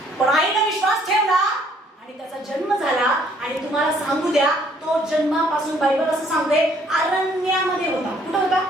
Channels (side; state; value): both; normal; correlation 0.63